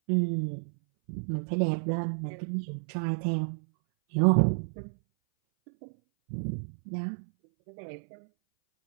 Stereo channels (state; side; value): silent; left; 58 dB below the other